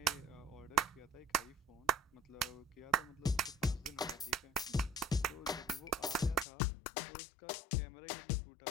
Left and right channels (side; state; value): right; drops out; at 6.5 s